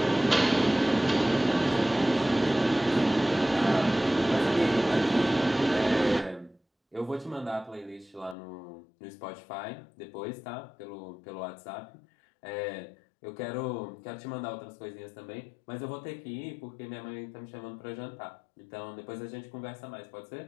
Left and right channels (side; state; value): right; drops out; at 8.3 s